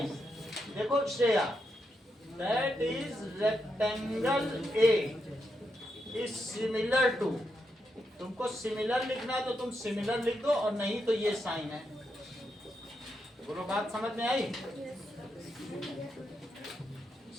देखो Shreya, that is rectangle A is similar to, तुमको सिमिलर लिखना है तो तुम सिमिलर लिख दो, और नहीं तो ये साइन है। बोलो, बात समझ में आई?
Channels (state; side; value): normal; both; correlation 0.83